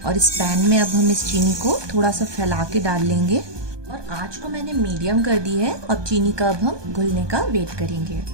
और इस पैन में अब हम इस चीनी को थोड़ा सा फैला के डाल लेंगे और आंच को मैंने मीडियम कर दी है। अब चीनी का अब हम घुलने का वेट करेंगे।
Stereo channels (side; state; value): left; late; 1.2 ms